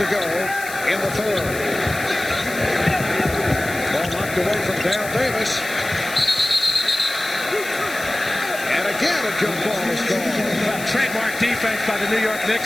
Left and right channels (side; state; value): left; noise; hiss, 12 dB below the sound